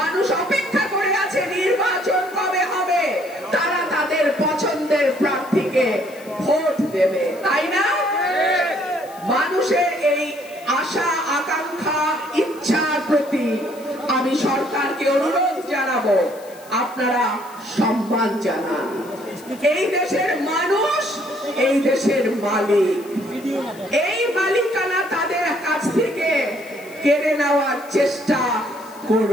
অপেক্ষা করে আছে নির্বাচন কবে হবে, তারা তাদের পছন্দের প্রার্থীকে ভোট দেবে, তাই না? মানুষের এই আশা, আকাঙ্ক্ষা, ইচ্ছার প্রতি আমি সরকারকে অনুরোধ জানাবো, আপনারা সম্মান জানান। এই দেশের মানুষ এই দেশের মালিক, এই মালিকানা তাদের কাছ থেকে কেড়ে নেওয়ার চেষ্টা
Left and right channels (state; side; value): noise; left; hiss, 22 dB below the sound